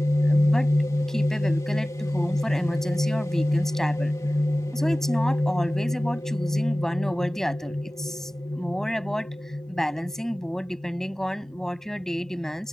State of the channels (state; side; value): normal; both; correlation 0.97